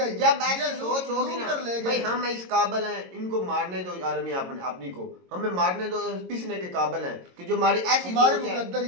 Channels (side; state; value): left; late; 22 ms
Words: जब ऐसी सोच होगी ना भाई हम इस काबिल हैं, इनको मारने दो आर्मी अपनी को, हमें मारने दो, पिसने के काबिल हैं कि जो हमारी ऐसी